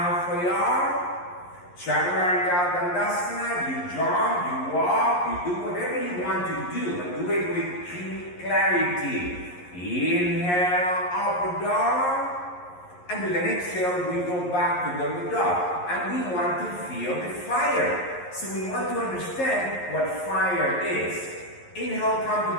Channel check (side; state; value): right; late; 11 ms